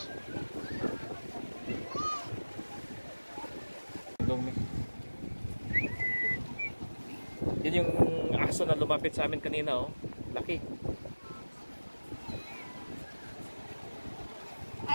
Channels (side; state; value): both; inverted; correlation -1.00